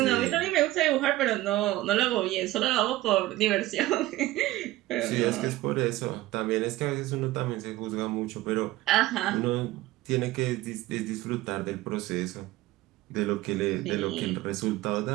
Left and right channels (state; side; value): quieter; left; 16.9 dB